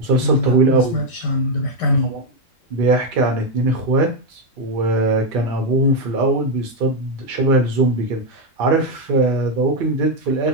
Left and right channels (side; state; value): both; normal; correlation 0.03